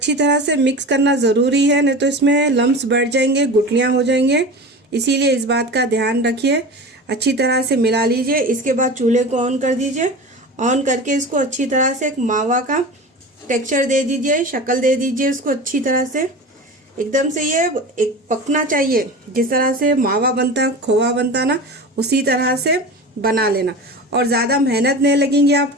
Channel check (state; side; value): normal; both; correlation 0.31